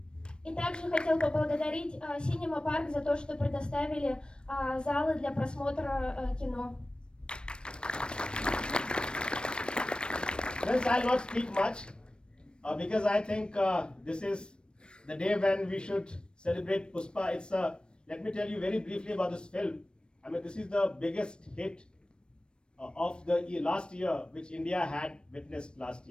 И также хотел поблагодарить Cinema Park за то, что предоставили залы для просмотра кино. Friends, I'll not speak much because I think this is the day when we should celebrate Pushpa. Let me tell you very briefly about this film. I mean, this is the biggest hit of the last year, which India had witnessed last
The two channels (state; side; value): late; right; 0.054 ms